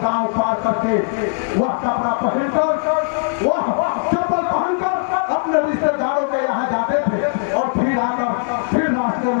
पार करके वह कपड़ा पहनकर वह चप्पल पहनकर अपने रिश्तेदारों के यहाँ जाते थे और फिर आकर फिर रास्ते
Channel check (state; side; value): silent; right; digital silence